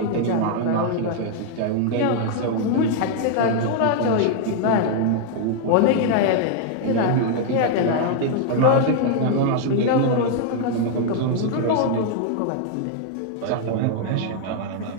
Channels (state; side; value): different; both; correlation 0.00